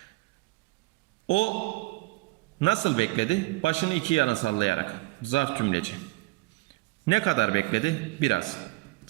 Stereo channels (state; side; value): quieter; left; 22.9 dB